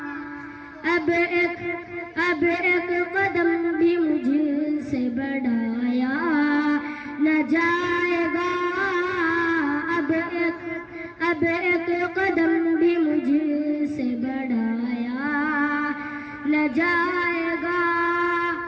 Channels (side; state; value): both; identical; correlation 1.00